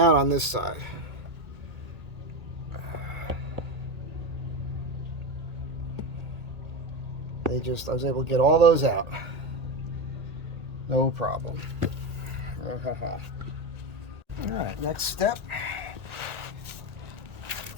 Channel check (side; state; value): left; late; 1.8 ms